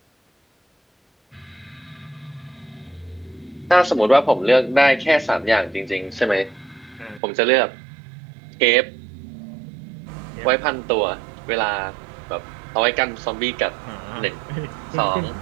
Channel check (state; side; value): drops out; left; at 7.2 s